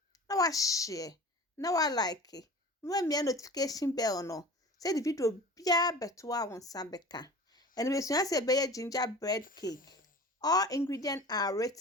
Now I share. Now I like it. Remember notification bell no. Say the video be better on Sambeka. And we soon say be gingerbread cake. All ingredients are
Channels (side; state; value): both; normal; correlation 0.39